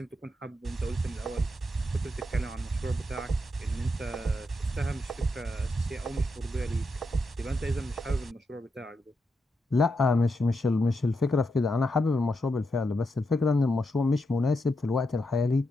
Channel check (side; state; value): both; normal; correlation 0.84